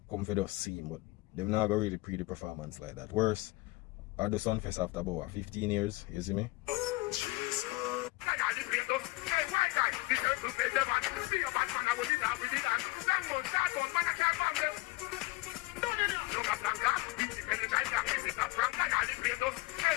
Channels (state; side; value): quieter; right; 22.0 dB